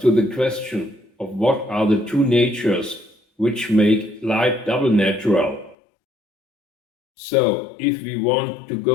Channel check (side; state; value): right; drops out; at 5.8 s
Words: to the question of what are the two natures which make light double natural. So, if we want to